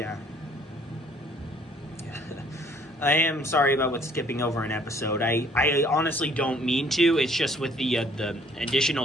I am sorry about what's skipping over an episode. I honestly don't mean to. It's just with the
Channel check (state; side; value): normal; both; correlation 0.59